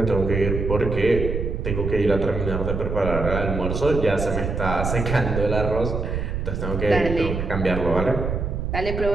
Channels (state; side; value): noise; right; rumble, 3 dB below the sound